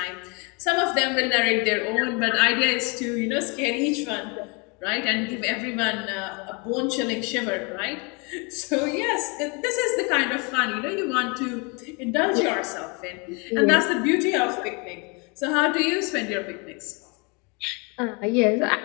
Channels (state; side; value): quieter; right; 31.4 dB